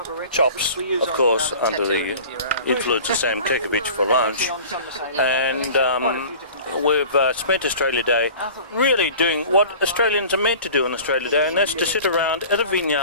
chops, of course, under the influence of Sam Kekovich for lunch. And we've spent Australia Day really doing what Australians are meant to do on Australia Day, and that's to sit around at a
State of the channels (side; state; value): both; inverted; correlation -0.41